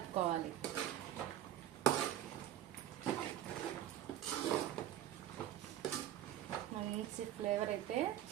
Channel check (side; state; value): left; quieter; 12.2 dB